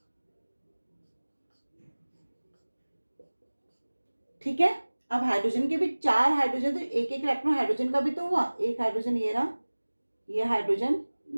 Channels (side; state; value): both; inverted; correlation -1.00